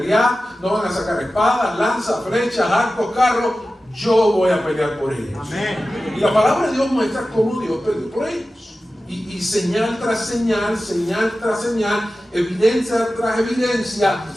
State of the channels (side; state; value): both; normal; correlation 0.94